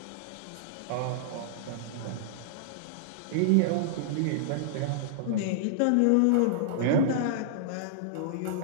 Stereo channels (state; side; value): different; both; correlation -0.02